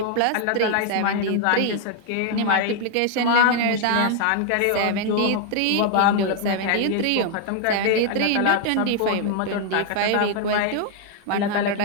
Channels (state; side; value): different; both; correlation 0.00